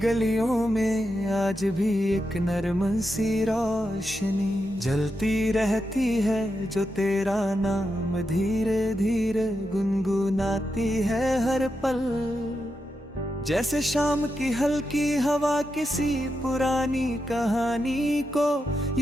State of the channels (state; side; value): normal; both; correlation 0.86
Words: में आज भी एक नर्म सी रोशनी जलती रहती है, जो तेरा नाम धीरे धीरे गुनगुनाती है हर पल। जैसे शाम की हल्की हवा किसी पुरानी कहानी को